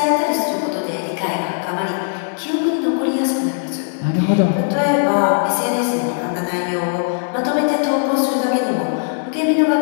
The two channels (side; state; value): right; silent; digital silence